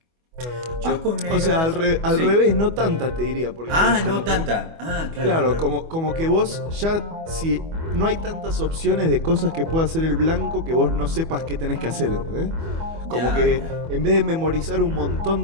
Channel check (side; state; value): left; late; 25 ms